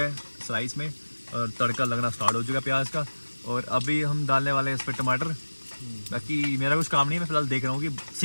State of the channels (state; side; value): inverted; both; correlation -1.00